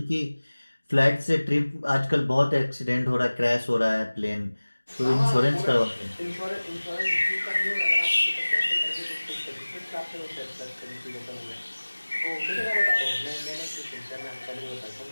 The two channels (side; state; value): both; inverted; correlation -1.00